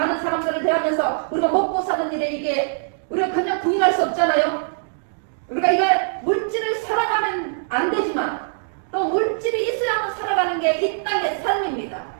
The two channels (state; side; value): silent; left; digital silence